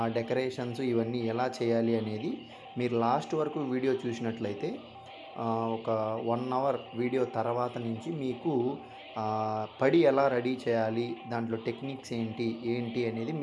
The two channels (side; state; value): both; identical; correlation 1.00